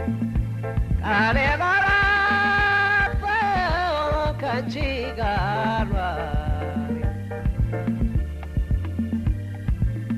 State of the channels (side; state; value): both; identical; correlation 1.00